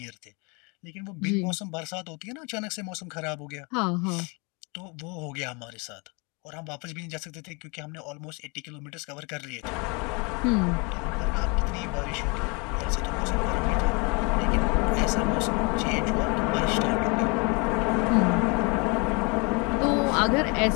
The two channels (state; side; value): quieter; right; 30.4 dB